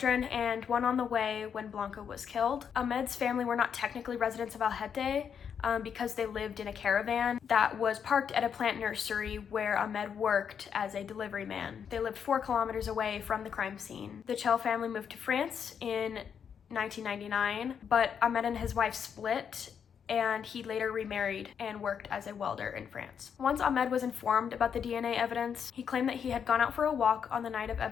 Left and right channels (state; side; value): quieter; right; 7.5 dB